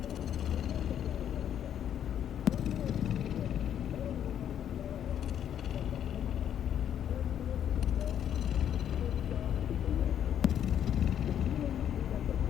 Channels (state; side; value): quieter; right; 9.7 dB